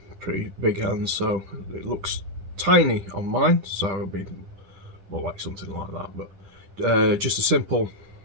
pretty big hands, so it looks tiny on mine, so it'll be more like something like that, but just a simple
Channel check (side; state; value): left; late; 10 ms